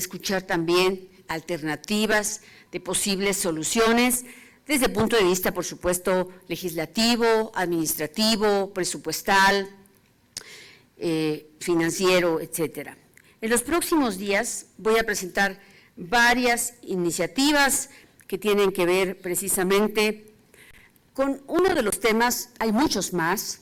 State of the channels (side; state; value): both; identical; correlation 1.00